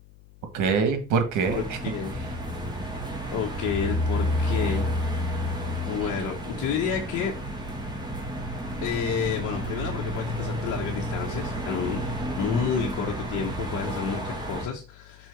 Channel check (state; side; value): noise; left; hum, 23 dB below the sound